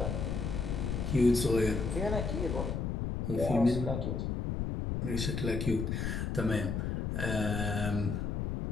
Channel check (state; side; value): noise; left; rumble, 1 dB below the sound